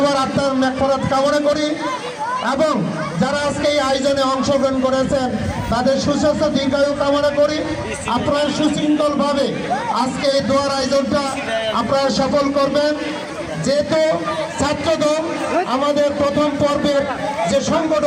আত্মার মাগফিরাত কামনা করি এবং যারা আজকে এই আয়োজনে অংশগ্রহণ করেছেন তাদের সুস্বাস্থ্য দীর্ঘায়ু কামনা করি। আপনারা সুশৃঙ্খলভাবে আজকে এই দোয়ার আয়োজনটা আপনারা সফল করবেন। যেহেতু ছাত্রদল আমাদের প্রথম পর্বের যে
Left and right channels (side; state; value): both; identical; correlation 1.00